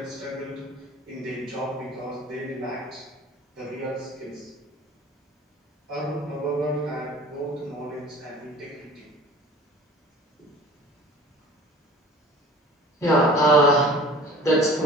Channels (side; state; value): both; normal; correlation 0.43